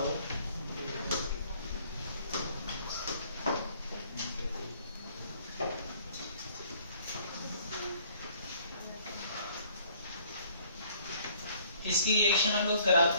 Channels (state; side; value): inverted; both; correlation -0.58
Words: इसकी रिएक्शन हम लोग